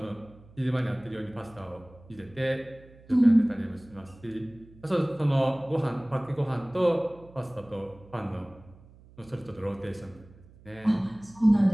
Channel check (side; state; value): right; noise; hum, 24 dB below the sound